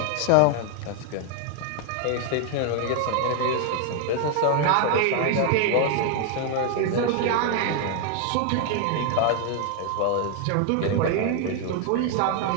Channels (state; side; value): different; both; correlation 0.00